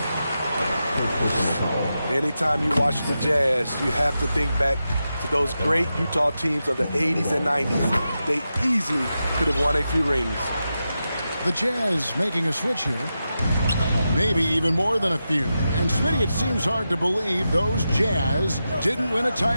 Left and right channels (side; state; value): both; inverted; correlation -0.90